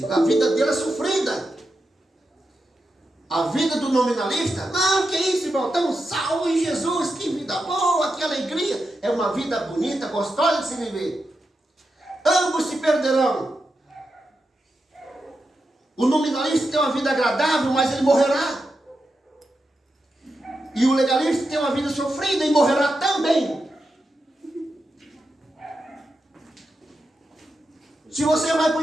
A vida dele é sofrida. A vida do nominalista, não, que isso, irmão, estamos salvos em Jesus, que vida boa, que alegria. É uma vida bonita, gostosa de se viver. Ambos se perderão. O nominalista tem uma vida agradável, mas ele morrerá. E o legalista tem uma vida sofrida e morrerá também. Se você vai para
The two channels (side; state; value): both; normal; correlation 0.88